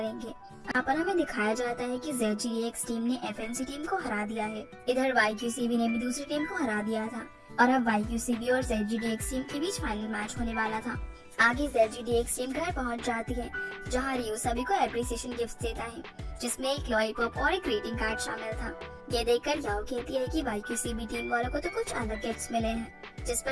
यहाँ पर हमें दिखाया जाता है कि ZGDX टीम ने FNC टीम को हरा दिया है। इधर YQCB ने भी दूसरी टीम को हरा दिया था और अब YQCB और ZGDX टीम के बीच फाइनल मैच होने वाला था। आगे ZGDX टीम घर पहुंच जाती है, जहां रियो सभी को एप्रिसिएशन गिफ्ट देता है, जिसमें एक लॉलीपॉप और एक ग्रीटिंग कार्ड शामिल था। ये देखकर याओ कहती है कि YQCB टीम वालों को तो कुछ अलग गिफ्ट्स मिले हैं, जिस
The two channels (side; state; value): both; identical; correlation 1.00